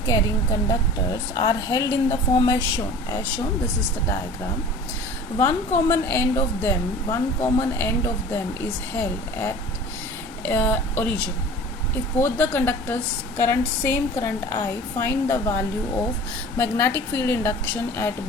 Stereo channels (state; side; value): normal; both; correlation 0.41